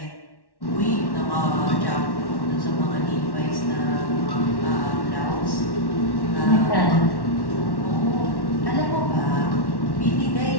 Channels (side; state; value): right; late; 1.1 ms